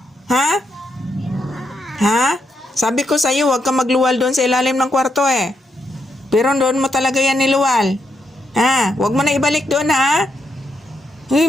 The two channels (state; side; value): normal; both; correlation 0.80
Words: Ha? Ha? Sabi ko sa'yo, huwag ka magluwal doon sa ilalim ng kwarto, eh. Pero doon mo talaga yan niluwal. Ha? Huwag mo na ibalik doon, ha? Uy,